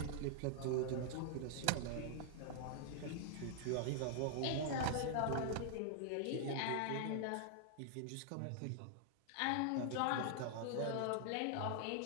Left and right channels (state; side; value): different; both; correlation -0.01